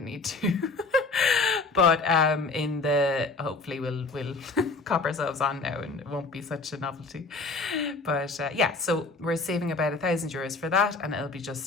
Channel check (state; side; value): quieter; right; 3.7 dB